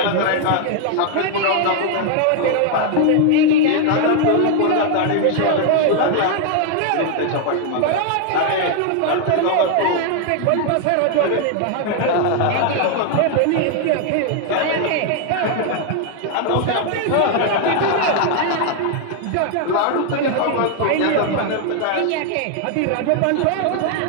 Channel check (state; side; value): different; both; correlation 0.00